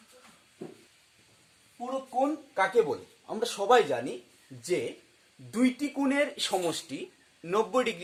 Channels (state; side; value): identical; both; correlation 1.00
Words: পূরক কোণ কাকে বলে? আমরা সবাই জানি যে দুইটি কোণের সমষ্টি 90